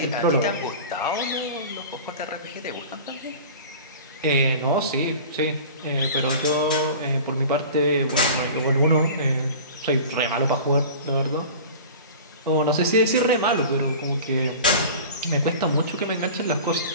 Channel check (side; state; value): both; inverted; correlation -0.38